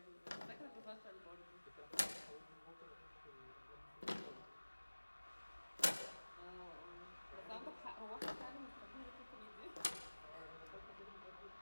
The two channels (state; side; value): inverted; both; correlation -1.00